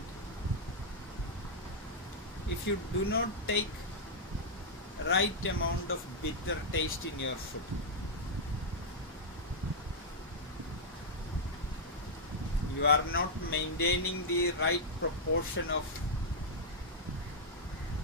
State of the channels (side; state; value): both; normal; correlation -0.06